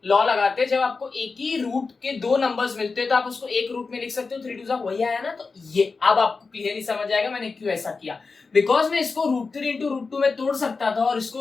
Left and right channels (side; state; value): right; quieter; 4.4 dB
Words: लॉ लगाते हैं, जब आपको एक ही रूट के दो नंबर्स मिलते हैं तो आप उसको एक रूट में लिख सकते हो, 3 2 वही आया ना। तो ये अब आपको क्लियरली समझ आएगा मैंने क्यों ऐसा किया, बिकॉज मैं इसको √3 इंटू √2 में तोड़ सकता था और